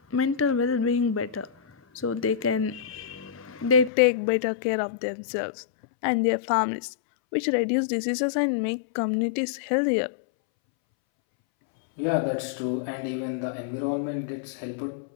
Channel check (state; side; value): drops out; right; at 3.9 s